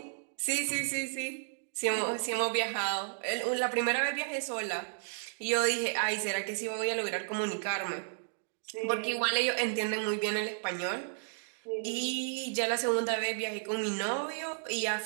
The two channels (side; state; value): left; silent; digital silence